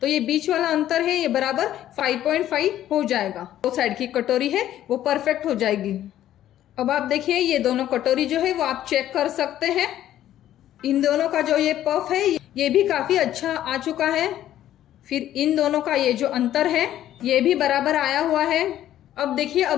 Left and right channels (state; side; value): quieter; right; 12.3 dB